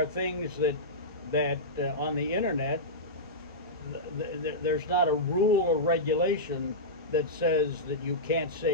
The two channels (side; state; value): both; normal; correlation -0.13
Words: things that on the internet, there's not a rule or regulation that says that you can't